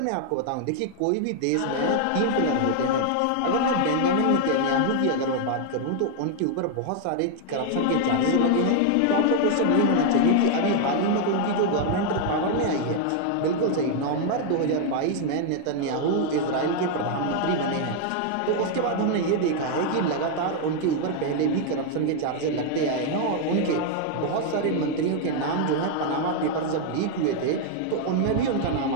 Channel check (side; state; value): both; different; correlation 0.00